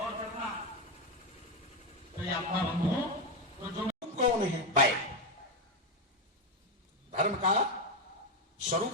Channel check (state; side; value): normal; both; correlation 0.09